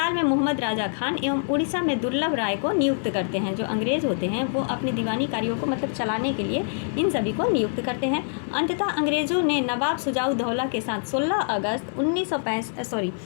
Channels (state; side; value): silent; right; 57 dB below the other